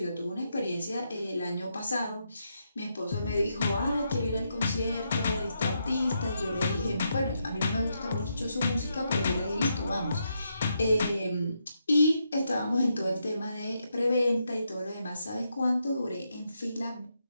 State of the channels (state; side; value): inverted; both; correlation -0.81